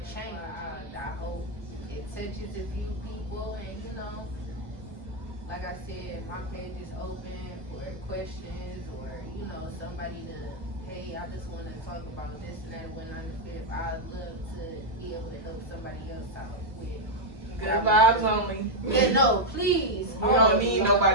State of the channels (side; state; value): both; normal; correlation -0.01